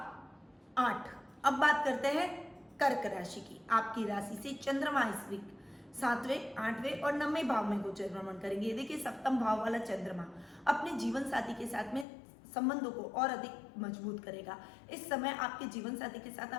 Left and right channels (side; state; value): right; drops out; at 12.1 s